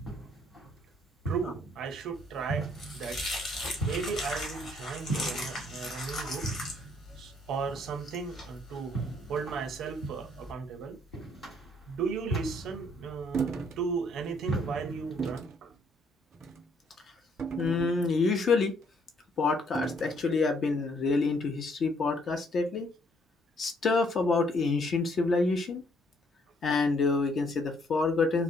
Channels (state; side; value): normal; both; correlation 0.67